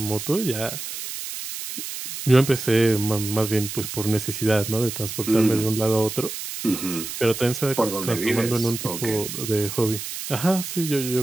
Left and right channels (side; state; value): right; noise; hiss, 7 dB below the sound